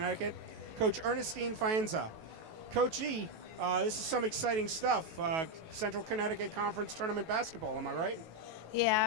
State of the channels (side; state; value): left; late; 18 ms